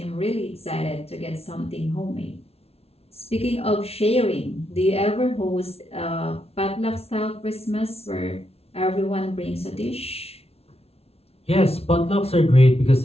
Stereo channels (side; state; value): right; late; 0.30 ms